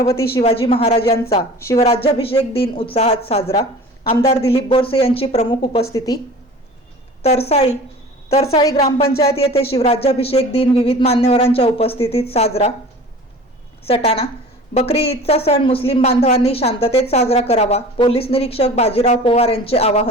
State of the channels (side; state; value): both; normal; correlation 0.41